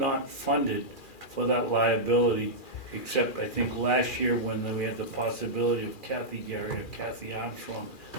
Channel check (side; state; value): right; late; 2.4 ms